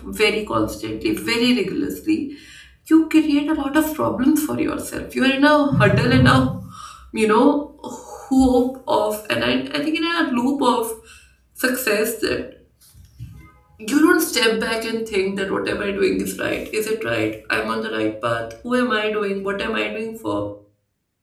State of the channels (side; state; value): both; identical; correlation 1.00